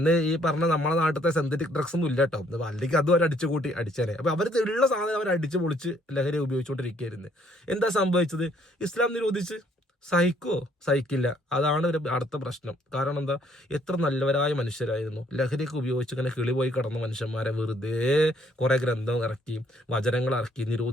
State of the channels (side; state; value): both; normal; correlation 0.65